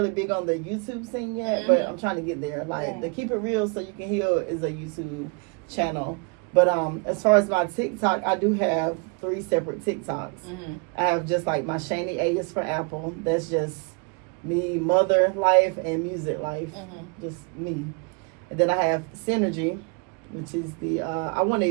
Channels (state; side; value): quieter; left; 33.3 dB